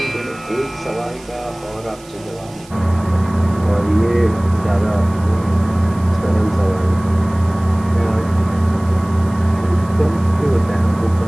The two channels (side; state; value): right; noise; hiss, 23 dB below the sound